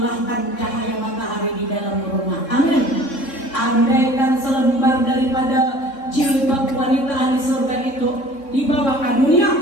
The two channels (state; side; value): late; right; 3.6 ms